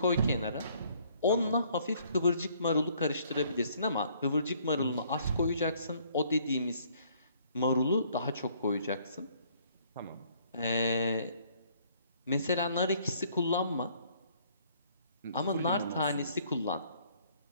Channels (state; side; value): inverted; both; correlation -0.62